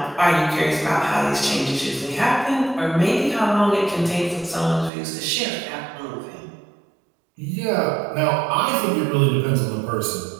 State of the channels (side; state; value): left; drops out; at 4.9 s